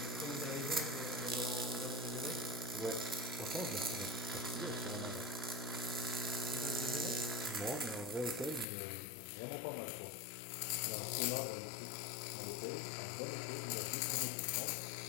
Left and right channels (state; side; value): drops out; right; at 8.7 s